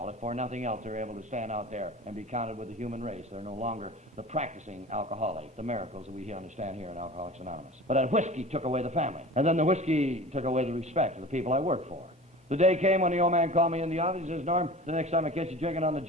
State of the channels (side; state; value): both; normal; correlation 0.38